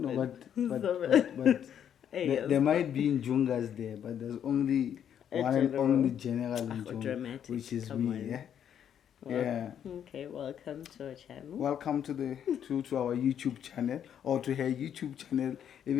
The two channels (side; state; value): right; quieter; 9.2 dB